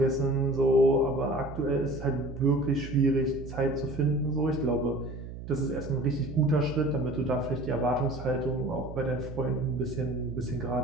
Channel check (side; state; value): right; noise; hum, 11 dB below the sound